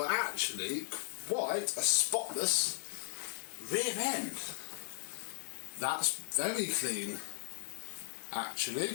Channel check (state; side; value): silent; right; digital silence